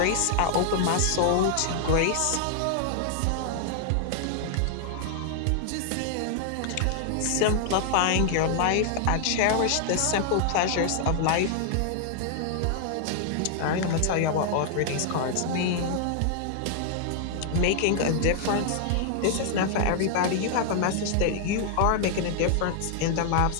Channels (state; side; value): different; both; correlation 0.00